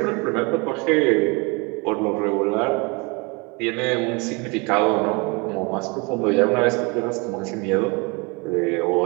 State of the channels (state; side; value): quieter; left; 29.3 dB